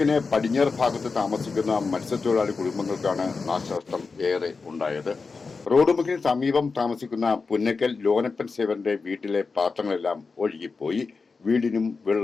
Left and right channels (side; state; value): right; quieter; 4.5 dB